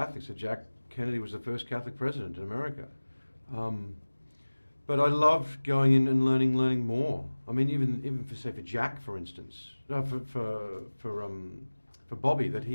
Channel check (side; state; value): both; inverted; correlation -1.00